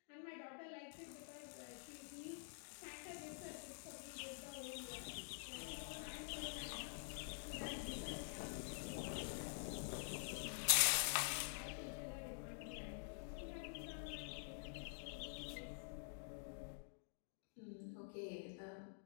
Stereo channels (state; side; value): silent; right; digital silence